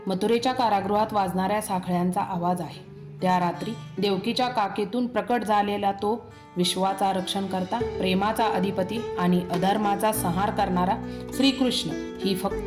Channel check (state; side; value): identical; both; correlation 1.00